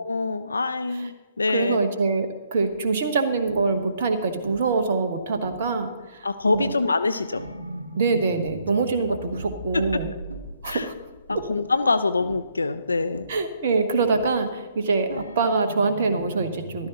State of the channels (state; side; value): inverted; both; correlation -0.71